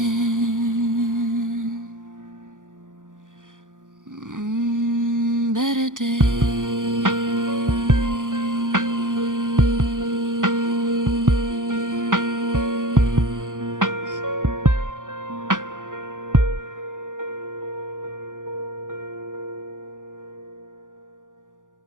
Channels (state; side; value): late; left; 0.88 ms